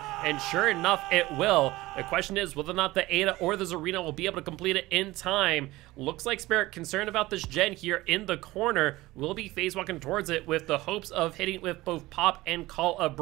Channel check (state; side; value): quieter; left; 18.7 dB